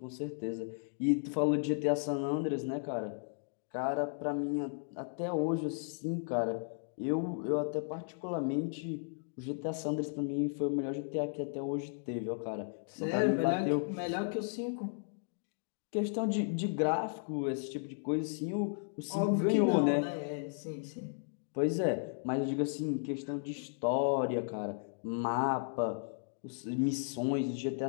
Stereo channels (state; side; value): silent; right; digital silence